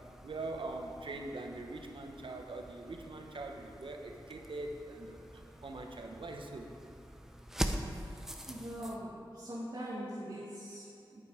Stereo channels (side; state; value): both; normal; correlation 0.80